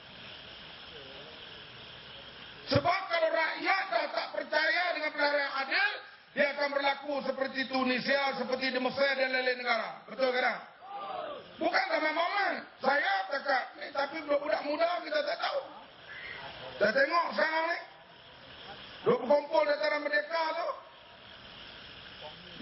Sebab kalau rakyat dah tak percaya dengan pilihan yang adil, dia akan berlaku seperti Tunisia, seperti di Mesir dan lain-lain negara. Betul ke tak? Bukan ramai-ramai. Saya cakap ni, tapi budak muda kita tak tahu. Saya tengok sekarang ni, dua berkumpul dataran Merdeka tu,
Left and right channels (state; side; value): identical; both; correlation 1.00